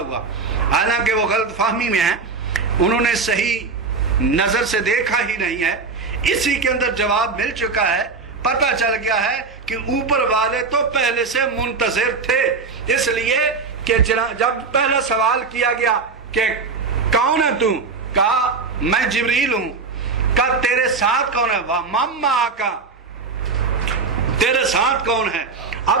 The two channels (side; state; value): left; quieter; 4.5 dB